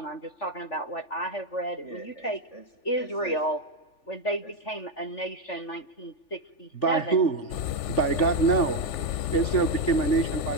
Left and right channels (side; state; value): right; late; 3.4 ms